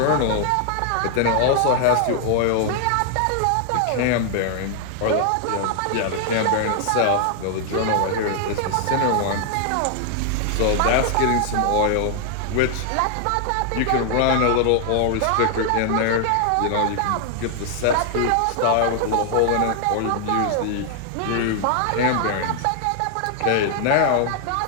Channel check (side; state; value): both; different; correlation 0.00